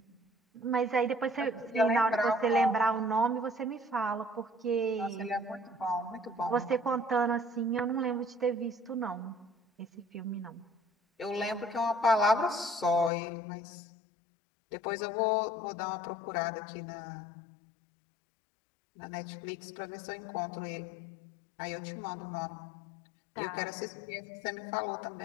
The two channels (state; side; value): drops out; right; at 13.1 s